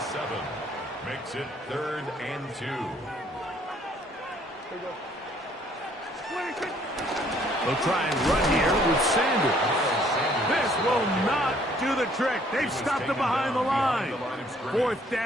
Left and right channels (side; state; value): both; normal; correlation 0.62